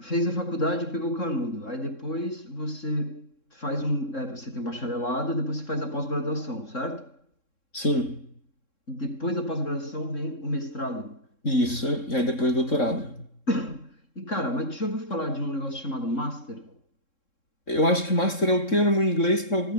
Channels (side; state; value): right; late; 3.7 ms